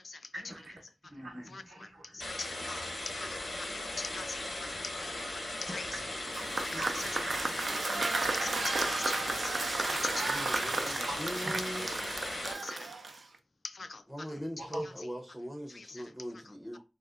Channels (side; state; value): both; normal; correlation 0.91